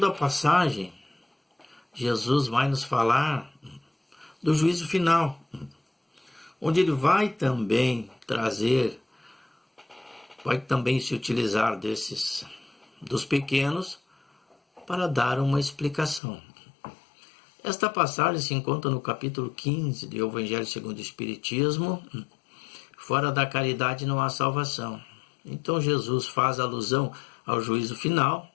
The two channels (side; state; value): right; drops out; at 16.2 s